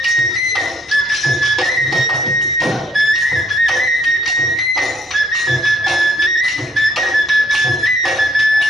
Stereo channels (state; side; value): normal; both; correlation 0.66